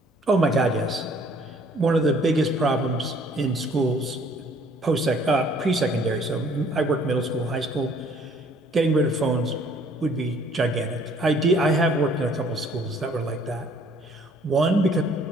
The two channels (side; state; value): both; normal; correlation 0.59